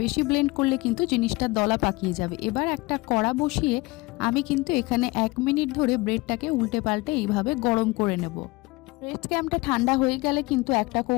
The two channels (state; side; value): quieter; right; 22.9 dB